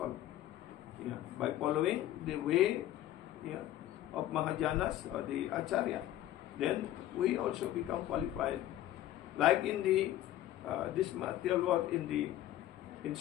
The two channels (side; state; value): right; quieter; 13.5 dB